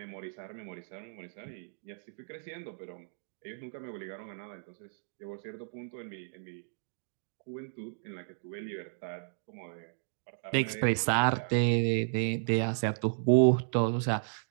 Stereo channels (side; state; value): left; silent; digital silence